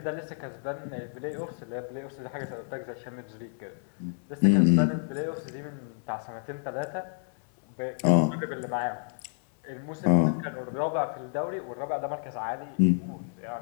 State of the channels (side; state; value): right; silent; digital silence